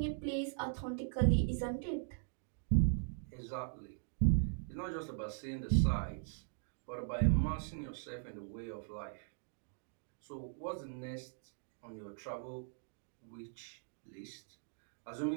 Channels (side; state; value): left; silent; digital silence